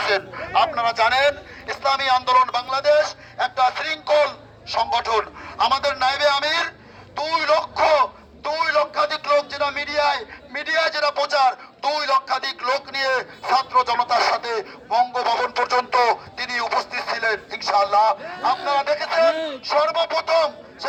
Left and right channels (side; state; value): both; identical; correlation 1.00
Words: আপনারা জানেন ইসলামী আন্দোলন বাংলাদেশ একটা শৃঙ্খল সংগঠন। আমাদের নায়েবে আমির 2 লক্ষাধিক লোক, যেটা মিডিয়ায় যেটা প্রচার, 2 লক্ষাধিক লোক নিয়ে ছাত্র জনতার সাথে বঙ্গভবন পর্যন্ত তিনি উপস্থিত ছিলেন ইনশাআল্লাহ। আপনারা দেখেছেন সর্বপ্রথম